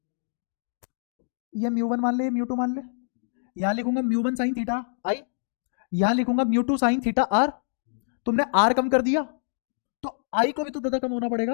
ये म्यू वन मान ले, म्यू टू मान ले, यहां लिखूंगा mu one sine theta i, यहां लिखूंगा mu two sine theta r. तुमने आर कम कर दिया तो आई को भी तो दादा कम होना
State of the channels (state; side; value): silent; right; digital silence